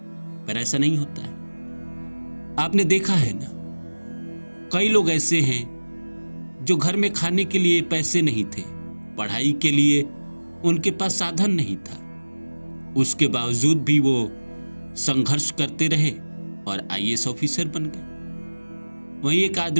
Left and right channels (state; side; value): inverted; both; correlation -1.00